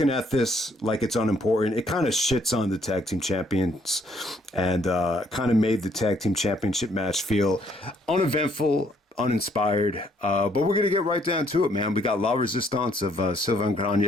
at this like it's unimportant. It kind of shits on the tag team champions and kind of made the tag team championship match feel uneventful, uninspired. But we're going to get right down to it, man. We got La Resistance of Sylvain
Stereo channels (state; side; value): normal; both; correlation 0.67